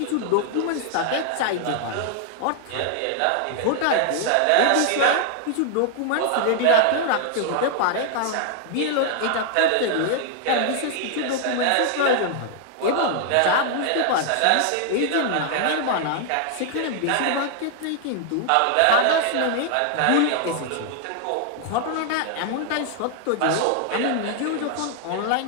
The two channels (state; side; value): different; both; correlation 0.00